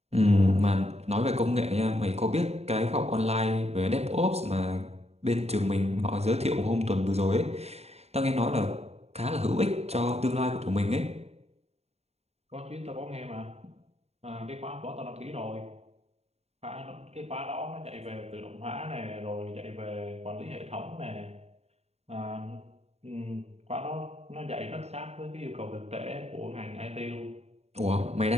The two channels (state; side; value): late; left; 0.31 ms